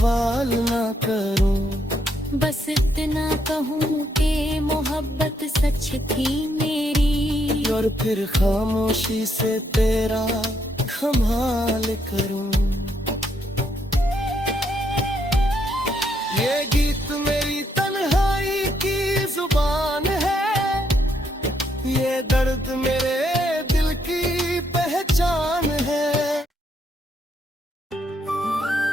ना करूं। बस इतना कहूँ कि मोहब्बत सच थी मेरी, और फिर खामोशी से तेरा कमाल करूं। ये गीत मेरी तन्हाई की जुबान है, ये दर्द मेरे दिल की पहचान है।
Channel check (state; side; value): normal; both; correlation 0.75